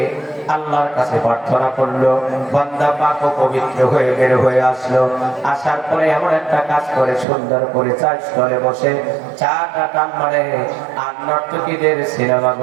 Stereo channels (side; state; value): left; drops out; at 7.2 s